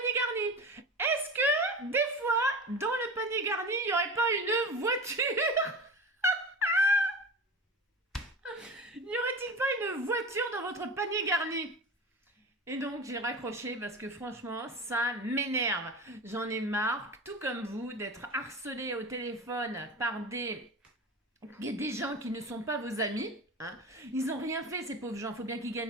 garni. Est-ce que, des fois, dans le panier garni, il n'y aurait pas une voiture? N'y aurait-il pas une voiture dans votre panier garni? Et donc j'ai raccroché parce que franchement, ça m'énerve. J'en ai marre, tout comme vous, d'être harcelé au téléphone par des gens qui ne sont pas vos amis. Hein. Ils n'ont rien fait, ces pauvres gens. Il faut bien qu'ils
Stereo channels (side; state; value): both; normal; correlation 0.30